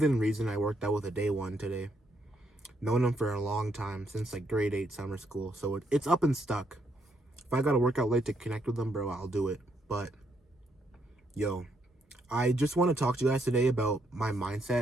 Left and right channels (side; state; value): both; normal; correlation 0.75